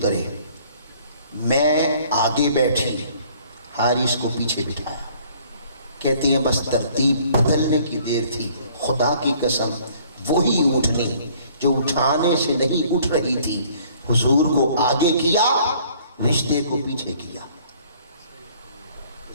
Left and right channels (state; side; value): inverted; both; correlation -0.58